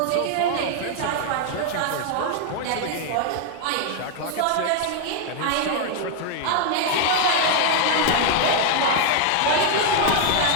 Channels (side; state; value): both; different; correlation 0.01